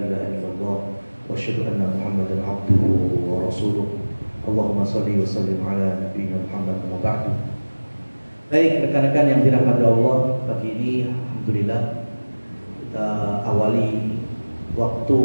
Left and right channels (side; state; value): both; inverted; correlation -1.00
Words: ilaha illallah wa asyhadu anna Muhammadan abduhu wa rasuluh. Allahumma shalli wa sallim ala nabiyyina Muhammad wa ba'du. Baik rekan-rekan yang dirahmati Allah, pagi ini alhamdulillah kita awali waktu